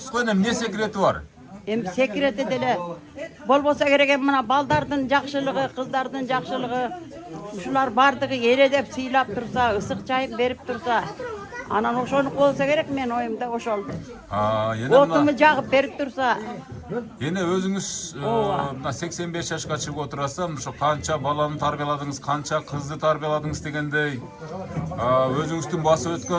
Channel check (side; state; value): both; identical; correlation 1.00